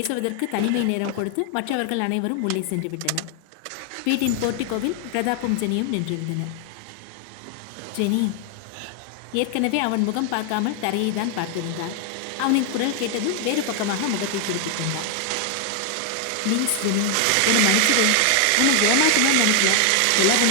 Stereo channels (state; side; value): different; both; correlation 0.00